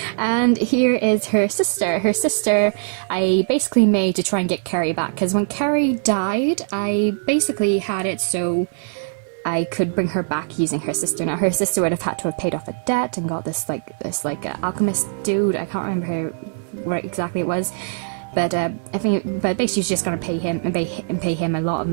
And here is her sister. Her sister I basically made to try and get Carrie back, because when Carrie died, I basically had it so I could bring her back using her sister. Now her sister would have had to have paid off a debt and got this alchemist dude. I can't remember where exactly it was. But I think, basically she's just going to pay him and pay him a lot of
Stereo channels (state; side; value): silent; left; digital silence